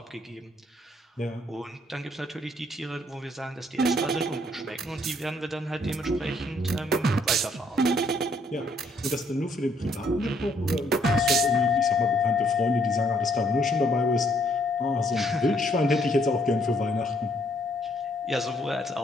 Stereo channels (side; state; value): both; normal; correlation 0.68